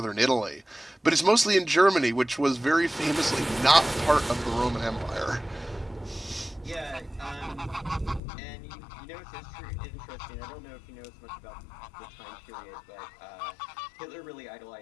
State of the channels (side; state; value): right; drops out; at 8.2 s